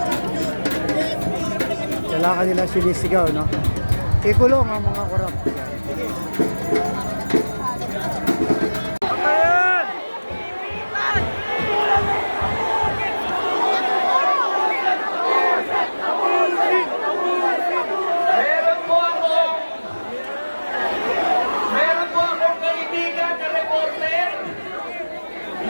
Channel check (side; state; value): both; inverted; correlation -1.00